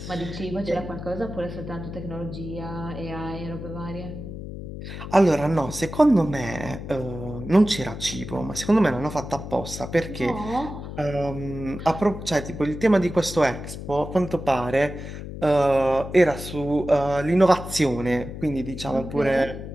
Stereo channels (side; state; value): left; noise; hum, 9 dB below the sound